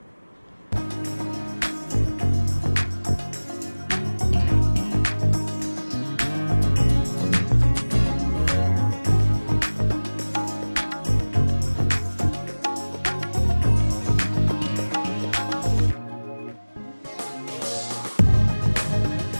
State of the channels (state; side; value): inverted; both; correlation -1.00